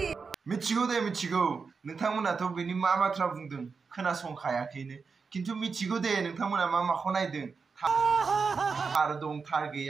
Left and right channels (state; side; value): quieter; left; 5.1 dB